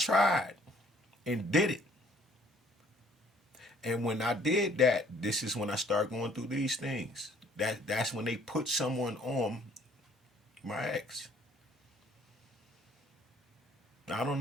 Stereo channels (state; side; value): normal; both; correlation 0.60